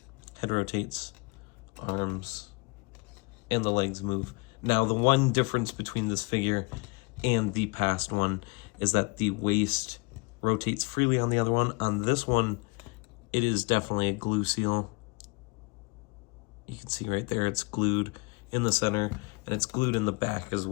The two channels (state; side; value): quieter; right; 27.9 dB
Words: Head rotates. Arms. And the legs move. Now, the one difference between this figure and the past one is that the waist rotates freely on the other one. On this one, it is definitely a glue seal. You can see right there, it's glued in the center, and it's glued in the back as